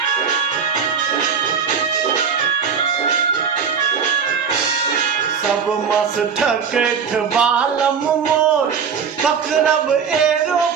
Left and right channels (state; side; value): quieter; left; 6.5 dB